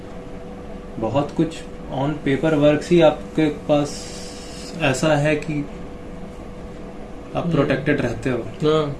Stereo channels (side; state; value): both; identical; correlation 1.00